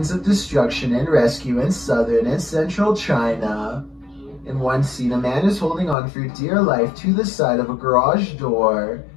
of destruction and rescue in southern and central China. In one scene, a man is holding on for dear life to the side of a garage door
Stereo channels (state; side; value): drops out; right; at 6.0 s